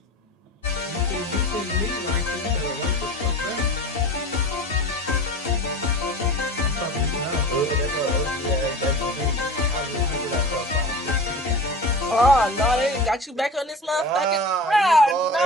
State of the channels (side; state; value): both; normal; correlation 0.35